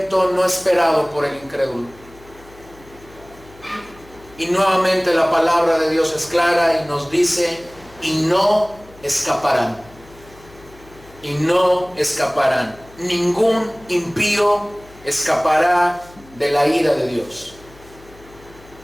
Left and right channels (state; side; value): noise; left; hum, 24 dB below the sound